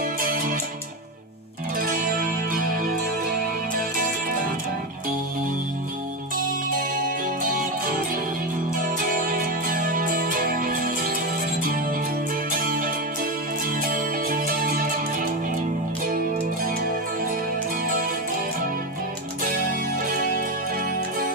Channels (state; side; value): normal; both; correlation 0.14